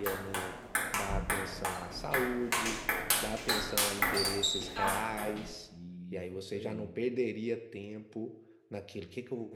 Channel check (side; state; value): both; identical; correlation 1.00